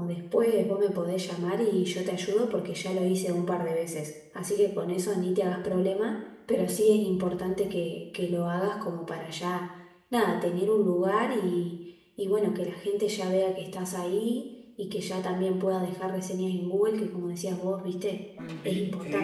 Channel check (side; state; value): both; identical; correlation 1.00